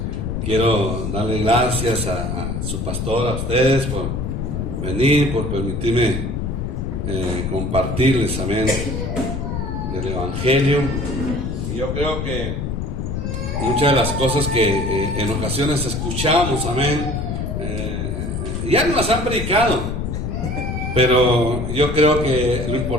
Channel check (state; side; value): noise; left; rumble, 3 dB below the sound